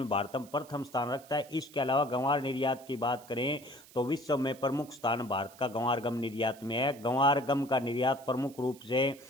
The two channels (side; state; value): right; noise; hiss, 22 dB below the sound